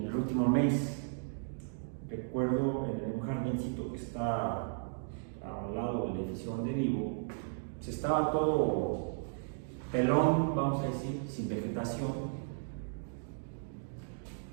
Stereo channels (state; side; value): silent; left; digital silence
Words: el último mes, recuerdo en un jardincito que está al lado del edificio donde vivo, se estaba todo pelón, vamos a decir, sin vegetación.